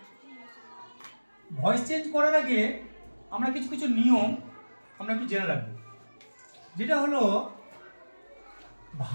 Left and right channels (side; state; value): both; inverted; correlation -1.00